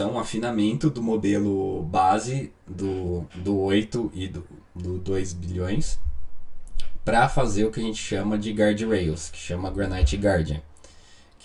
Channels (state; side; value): identical; both; correlation 1.00